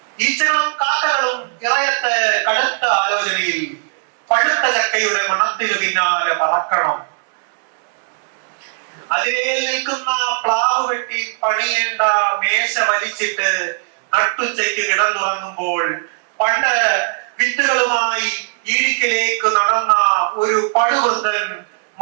ഈച്ചകളും കാക്കകളും ഇറയത്ത് കടുത്ത ആലോചനയിൽ പഴുത്ത ചക്കയുടെ മണത്തിനു പിന്നാലെ പറക്കണം. അതിലേ നിൽക്കുന്ന പ്ലാവ് വെട്ടി പണിയേണ്ട മേശ വലിച്ചിട്ട് നട്ടുച്ചയ്ക്ക് കിടന്നുറങ്ങുമ്പോൾ പണ്ട് വിത്തുകളുമായി ഈടിക്കലേക്ക് നടന്ന ഒരു പടുവൃദ്ധൻ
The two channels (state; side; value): silent; left; digital silence